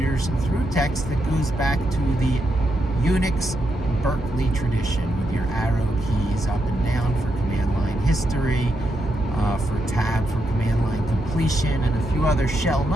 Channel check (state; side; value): normal; both; correlation 0.82